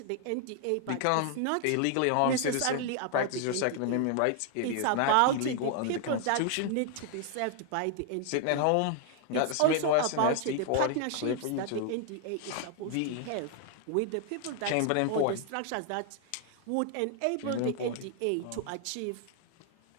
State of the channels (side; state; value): both; different; correlation 0.00